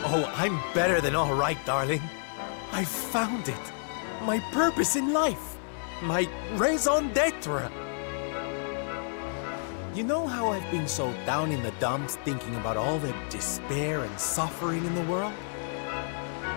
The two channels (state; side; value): silent; right; 58 dB below the other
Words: Oh, I'm better than all right, darling. I found it. My purpose in life. My raison d'etre. You know how I've been so down in the dumps thinking about all the despair and suffering in the world?